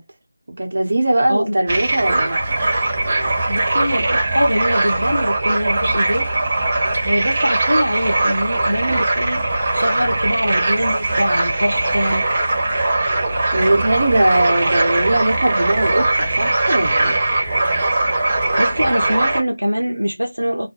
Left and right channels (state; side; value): inverted; both; correlation -0.96